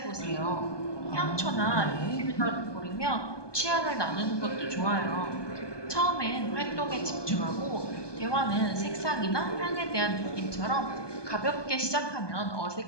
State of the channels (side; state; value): right; late; 1.2 ms